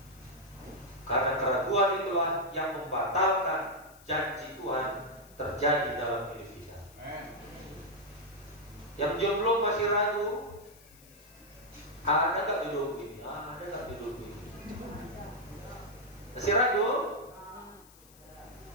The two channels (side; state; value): left; noise; hiss, 24 dB below the sound